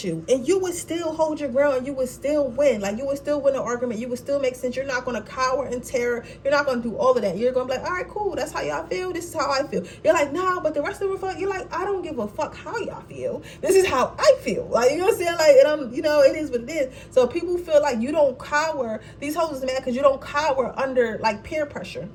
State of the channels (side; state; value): both; identical; correlation 1.00